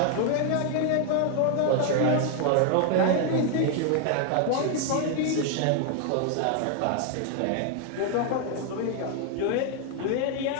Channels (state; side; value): different; both; correlation 0.00